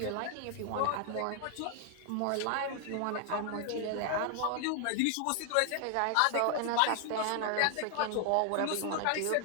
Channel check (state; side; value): different; both; correlation 0.00